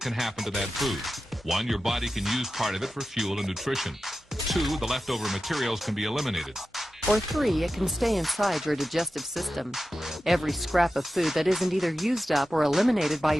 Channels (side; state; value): both; normal; correlation 0.93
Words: happen to that food. 1, your body can use part of it for fuel and nutrition. 2, the leftover materials can be eliminated. Or 3, it can stay inside your digestive system. Every scrap of food that isn't either used up or eliminated by